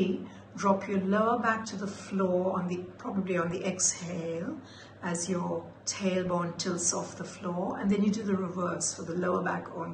drop your lower back to the floor, probably on the exhale, as your tailbone tilts off the floor, and then you do the reverse for the lower back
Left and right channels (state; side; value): identical; both; correlation 1.00